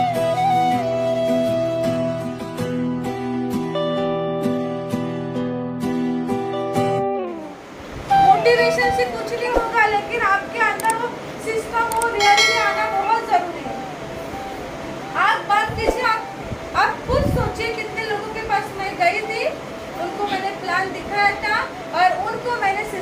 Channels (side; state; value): both; identical; correlation 1.00